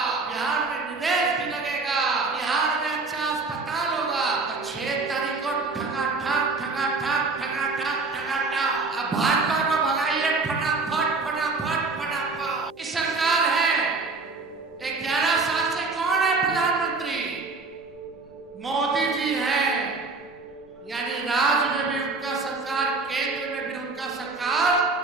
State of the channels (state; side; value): quieter; left; 3.9 dB